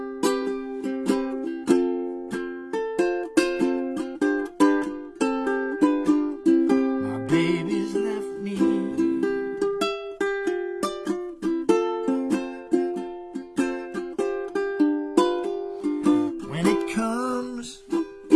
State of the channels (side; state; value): both; identical; correlation 1.00